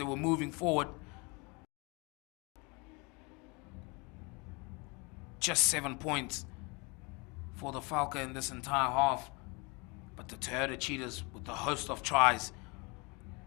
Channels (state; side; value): quieter; right; 29.1 dB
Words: were moving forward. Just 7 points for the Valke in this entire half. But the Toyota Cheetahs with the host of tries.